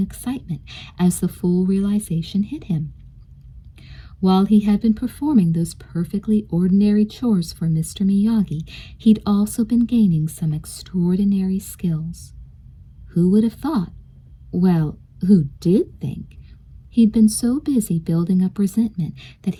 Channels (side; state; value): both; identical; correlation 1.00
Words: as the full realization hit him. While he had been performing those perfectly ordinary chores for Mr. Miyagi, he'd also been gaining some extraordinary skills. Who would have thought? Well, who did think? He'd been so busy building up resentment that